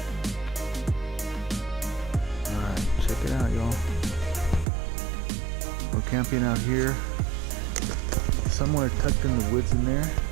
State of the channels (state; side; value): drops out; left; at 4.7 s